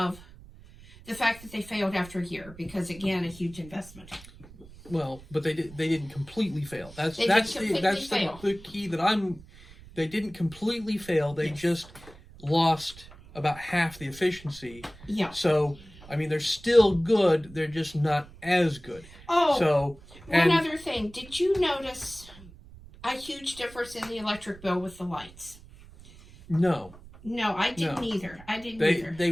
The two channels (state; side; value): noise; right; rumble, 20 dB below the sound